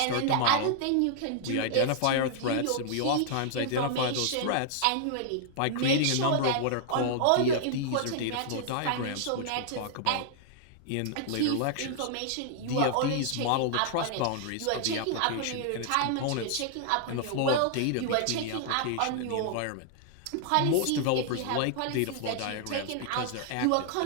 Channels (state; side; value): different; both; correlation -0.01